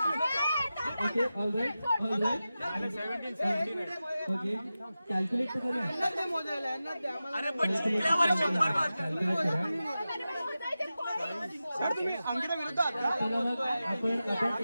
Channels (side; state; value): both; inverted; correlation -0.94